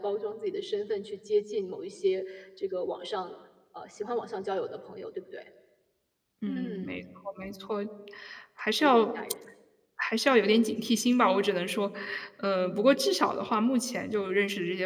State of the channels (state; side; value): identical; both; correlation 1.00